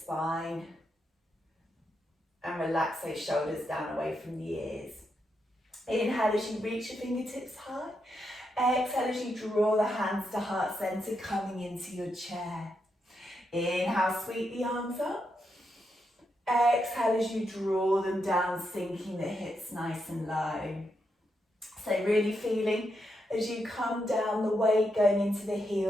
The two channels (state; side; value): normal; both; correlation 0.83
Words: And relax those shoulders down away from the ears. Inhale as you reach your fingertips high. Exhale as you draw the hands to heart center, coming into your chair. Inhale, sweep the arms up. Exhale as you draw them down, sinking the hips nice and low. So really feeling as you come down, the weight going into the